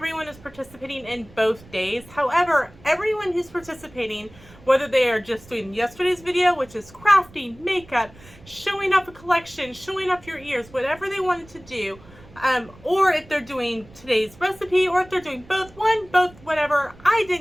is participating in both days. However, everyone who's participating, whether they are just doing yesterday's video, which is crafting, makeup, showing off a collection, showing off your ears, whatever they wanted to do, or if they're doing today's recipe, or if they're doing both, whatever, I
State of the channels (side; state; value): right; noise; rumble, 23 dB below the sound